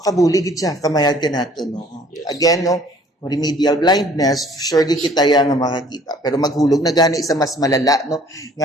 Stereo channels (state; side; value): normal; both; correlation 0.55